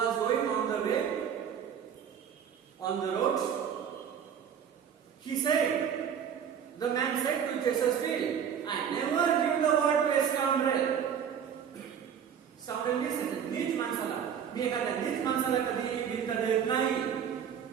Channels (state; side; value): quieter; left; 8.1 dB